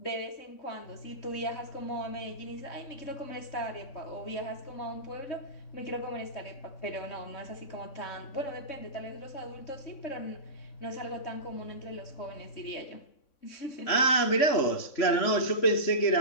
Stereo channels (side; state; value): right; late; 3.6 ms